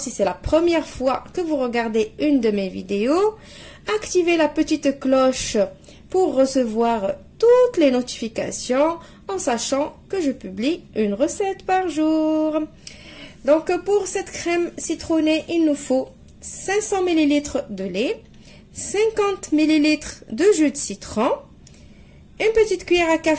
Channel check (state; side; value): identical; both; correlation 1.00